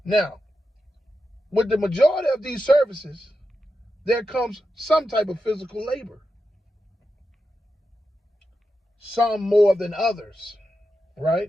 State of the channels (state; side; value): normal; both; correlation 0.89